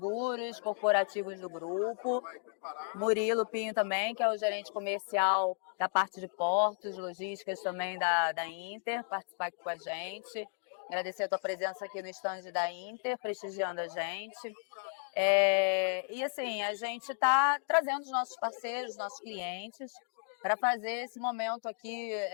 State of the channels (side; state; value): right; silent; digital silence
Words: corporativos do grupo. Murilo Pinho também, que é o gerente comercial da parte de portos, logísticas também da Inter, participar aqui com a gente. Agradecer a tua presença aqui no stand da Inter, prestigiando a gente. E assim, a gente está trazendo os nossos parceiros, os nossos clientes, para fazer esse momento aqui,